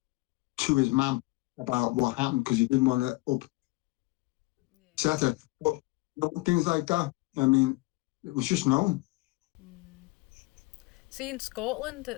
to his mum about what happened because he didn't want to upset her. But things like that, I mean, it was just known. See, in Scotland,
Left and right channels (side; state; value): right; quieter; 22.9 dB